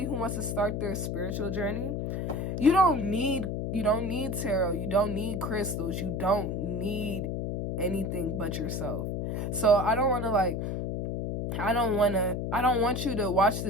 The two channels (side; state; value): left; noise; hum, 2 dB below the sound